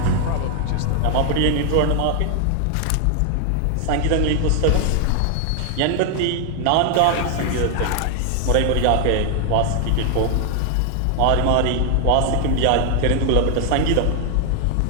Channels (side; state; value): both; different; correlation 0.00